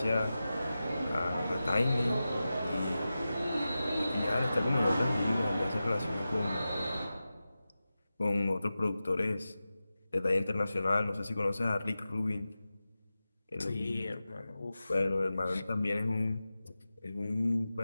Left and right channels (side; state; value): both; inverted; correlation -0.94